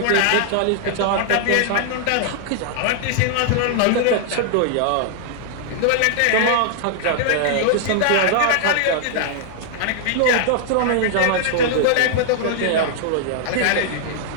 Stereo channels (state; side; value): different; both; correlation 0.00